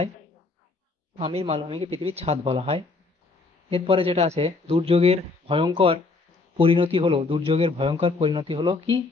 পামির মালভূমিকে পৃথিবীর ছাদ বলা হয়। এরপরে যেটা আছে, দুর্যোগের ভয়ঙ্কর পরিণতি হলো কি?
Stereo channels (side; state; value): right; quieter; 3.8 dB